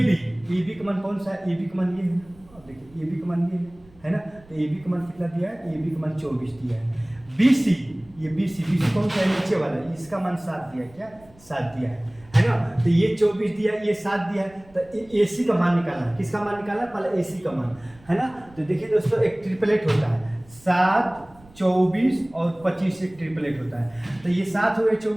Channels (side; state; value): right; noise; rumble, 26 dB below the sound